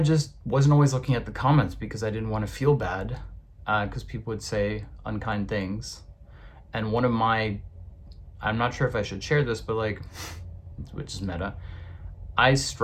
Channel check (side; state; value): both; identical; correlation 1.00